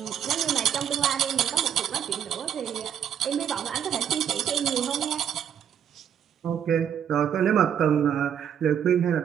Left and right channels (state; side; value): quieter; left; 9.0 dB